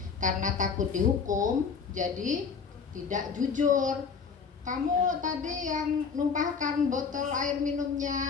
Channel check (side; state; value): right; quieter; 5.8 dB